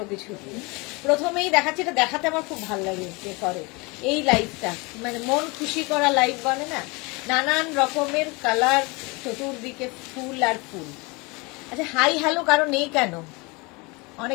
কিছু দিয়ে। প্রথমেই দেখাচ্ছি, এটা দেখাতে আমার খুব ভালো লাগে ডেকরে এই লাইভটা, মানে মন খুশি করা লাইভ বলে না, নানান রকমের কালার, চতুর্দিকে ফুল আর ফুল। আচ্ছা, হাই হ্যালো কারো নেই কেন?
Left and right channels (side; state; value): right; quieter; 27.0 dB